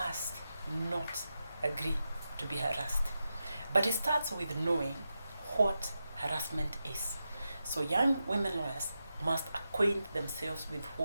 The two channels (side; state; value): both; inverted; correlation -0.89